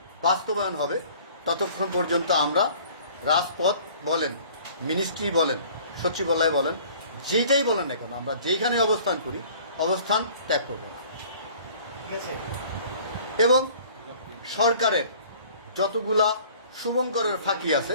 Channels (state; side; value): inverted; both; correlation -0.51